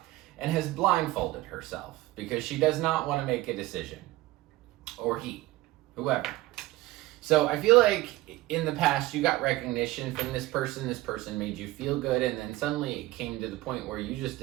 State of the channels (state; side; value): quieter; left; 18.2 dB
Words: and has blindfolded herself because she does not want to make a decision. Or he, whoever. So I feel like in the past you got recognition from this person made you feel good, and then suddenly it came to the point where you just